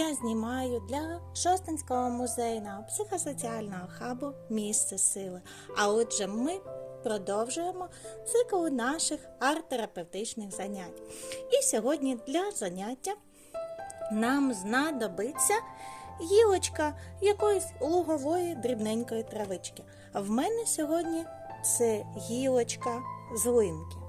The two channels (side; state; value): both; identical; correlation 1.00